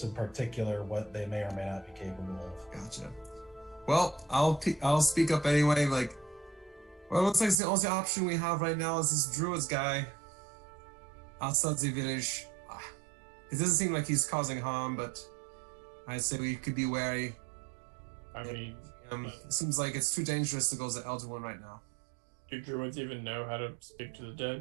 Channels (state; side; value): drops out; left; at 7.6 s